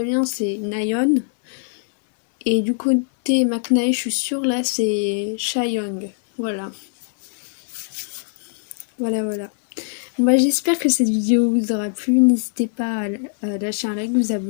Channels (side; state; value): right; silent; 65 dB below the other